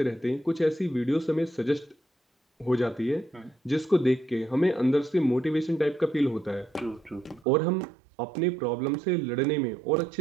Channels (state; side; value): drops out; left; at 7.5 s